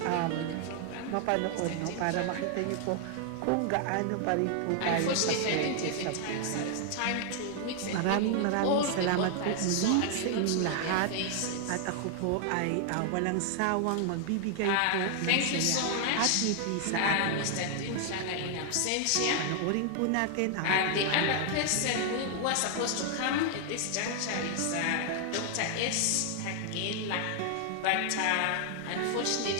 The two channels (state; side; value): different; both; correlation 0.00